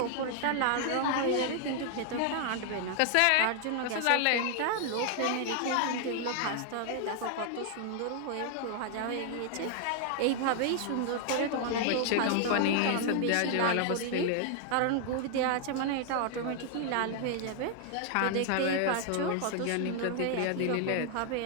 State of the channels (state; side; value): different; both; correlation 0.00